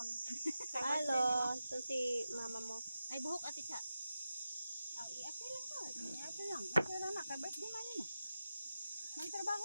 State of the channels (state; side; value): inverted; both; correlation -0.92